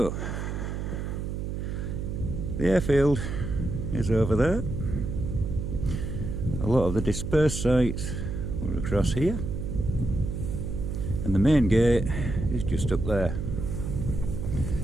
the airfield is over there. A lot of the dispersed sites were across here. And the main gate is just up there.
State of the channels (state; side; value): noise; right; hum, 4 dB below the sound